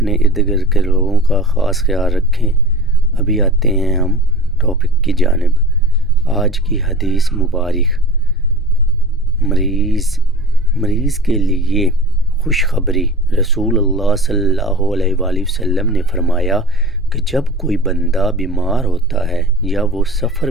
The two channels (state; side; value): normal; both; correlation 0.36